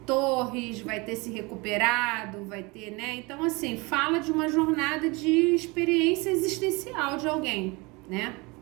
torres, vai ter se recuperado, vai ter, né? Então, assim, fala de uma jornada de experiência existencial de alguém, né?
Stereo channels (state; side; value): quieter; left; 26.1 dB